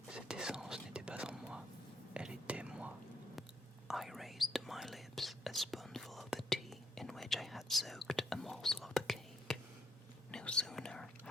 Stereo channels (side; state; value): both; normal; correlation 0.72